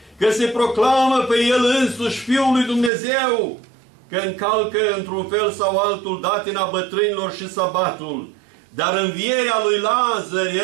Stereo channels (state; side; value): drops out; left; at 2.9 s